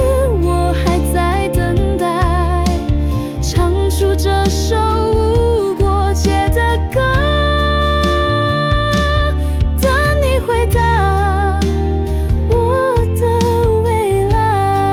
我还在等待，唱出这首无国界的歌，等你回答我的未来。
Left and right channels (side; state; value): both; identical; correlation 1.00